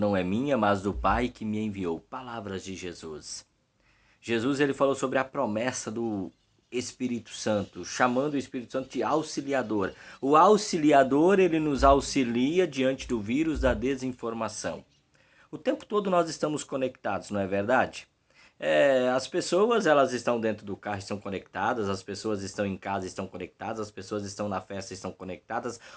é minha, mas do Pai que me enviou. Palavras de Jesus. Jesus ele falou sobre a promessa do Espírito Santo, chamando o Espírito Santo de auxiliador. O auxiliador ele nos auxilia diante do vírus da desinformação. O tempo todo nós estamos conectados, não é verdade? As pessoas elas estão dentro do carro, estão conectadas, as pessoas estão em casa, estão conectadas, as pessoas estão na festa, estão conectadas.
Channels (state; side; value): identical; both; correlation 1.00